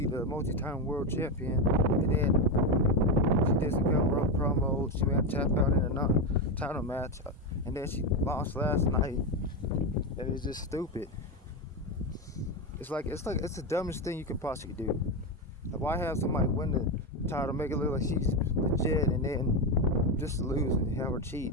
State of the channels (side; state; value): both; normal; correlation 0.11